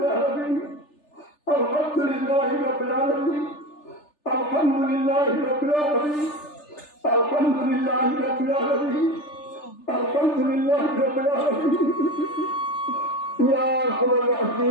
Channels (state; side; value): late; right; 3.4 ms